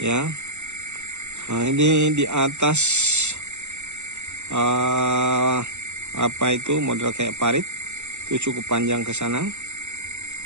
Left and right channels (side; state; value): left; late; 0.83 ms